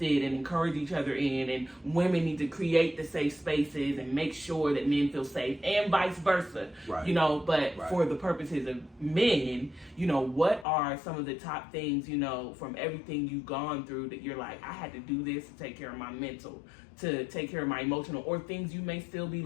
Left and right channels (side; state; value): right; drops out; at 10.7 s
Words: and encourage each other in, and women need to create the safe spaces and make sure that men feel safe, and vice versa. Right. You know, but for the purposes of men, you know, what are some of the top things, you know, from everything you've gone through that you're like, I had to do this to take care of my mental, to take care of my emotional, or things you may still be